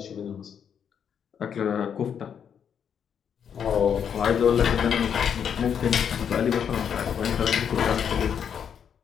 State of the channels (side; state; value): right; quieter; 7.9 dB